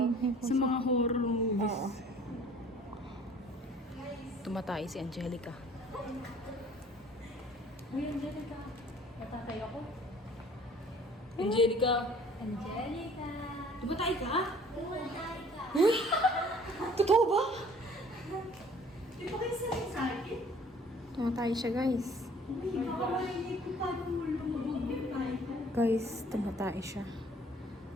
mga- Sa mga horror movies. Oo. Tumatay si Angelica. Uy, Angelica. Natatay ako. Angelica. Angelica. Tumatay ka? Totoo ba? Di ba kayo sanay sa akin? Tumatay siya guys. Uy, kakawalay ko paano mo lumabog yung tayo ko. Guys, tumatay siya.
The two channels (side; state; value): both; normal; correlation 0.53